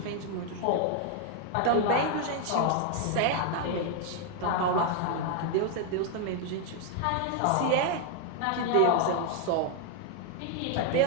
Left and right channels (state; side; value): different; both; correlation 0.00